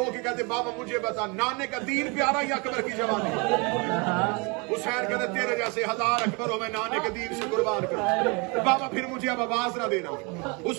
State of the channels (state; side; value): quieter; left; 30.5 dB